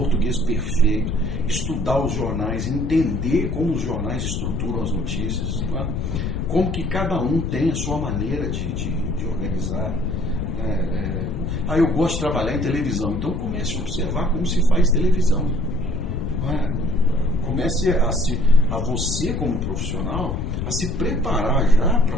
perfeito, estudar os jornais, entender como os jornais estruturam as notícias, não é? Como que cada um tem a sua maneira de organizar. Eu gosto de trabalhar em televisão, então comece a observar como se faz televisão. Comece a você, como profissional, a se preparar já para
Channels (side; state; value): left; noise; rumble, 2 dB below the sound